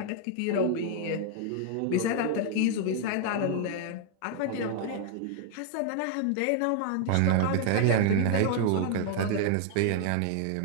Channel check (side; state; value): both; different; correlation 0.00